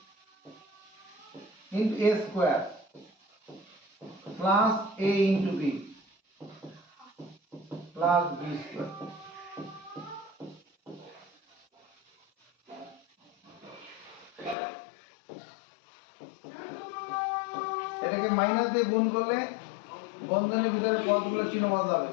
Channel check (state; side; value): drops out; right; at 14.6 s